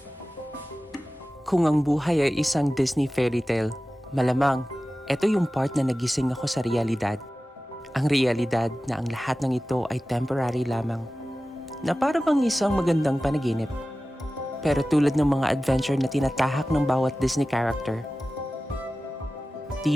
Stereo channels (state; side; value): normal; both; correlation 0.95